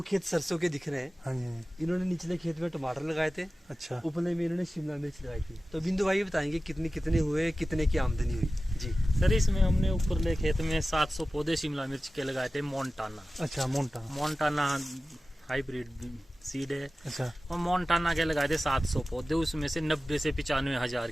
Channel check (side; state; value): both; normal; correlation 0.95